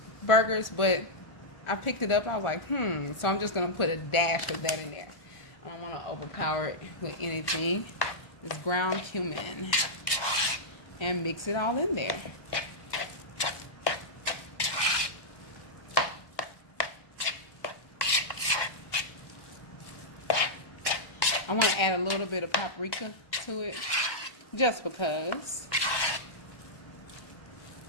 burgers, but I picked it up. I was like, so I'm just going to put a dash of that in there. I don't want to overpower it with anything. It's ground cumin. And mix it all in there. I want to add a little bit of paprika to it, just because.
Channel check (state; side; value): late; right; 1.2 ms